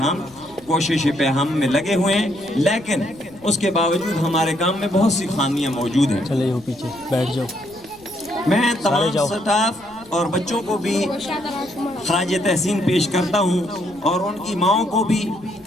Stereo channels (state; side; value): noise; left; rumble, 27 dB below the sound